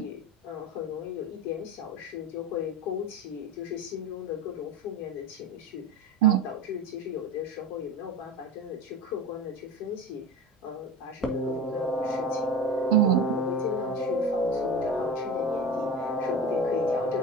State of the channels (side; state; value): both; normal; correlation 0.29